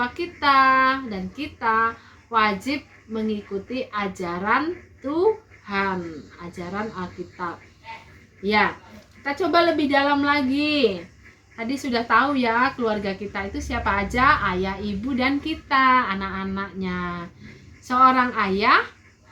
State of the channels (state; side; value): identical; both; correlation 1.00